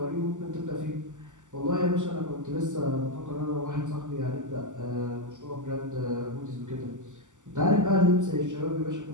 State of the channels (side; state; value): left; late; 0.86 ms